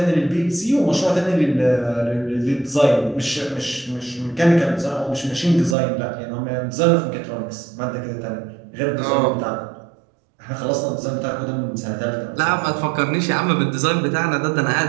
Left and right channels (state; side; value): drops out; left; at 5.8 s